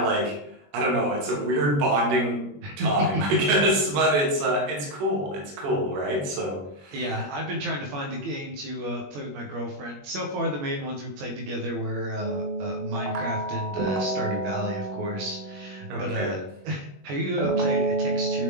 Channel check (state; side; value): late; left; 21 ms